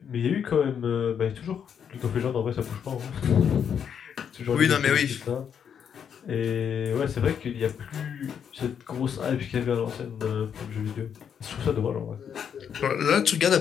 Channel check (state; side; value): quieter; right; 7.9 dB